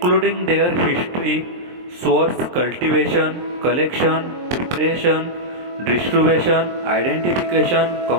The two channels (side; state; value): left; late; 23 ms